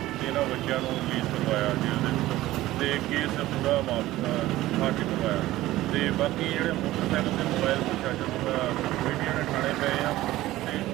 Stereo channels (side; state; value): left; quieter; 16.2 dB